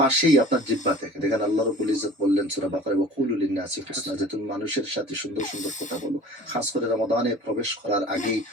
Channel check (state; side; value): normal; both; correlation 0.44